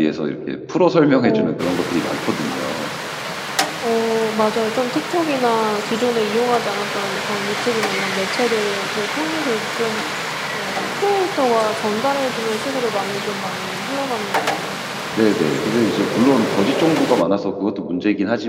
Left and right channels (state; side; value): identical; both; correlation 1.00